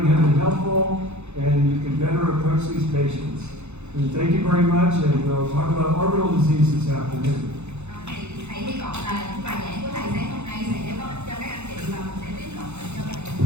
have been helpful and you can better approach these patients. And thank you very much, and we'll talk about orbital disease this afternoon. Thì thầy hy vọng là những bài giảng của thầy sáng hôm nay sẽ có ích cho các anh chị và mình sẽ tiếp cận bệnh nhân và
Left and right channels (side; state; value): left; late; 0.81 ms